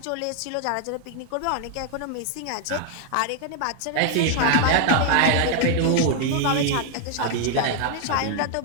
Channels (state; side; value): different; both; correlation 0.00